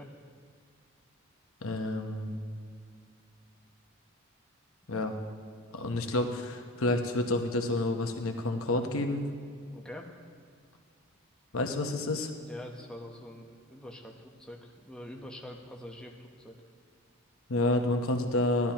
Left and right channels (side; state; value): both; normal; correlation 0.31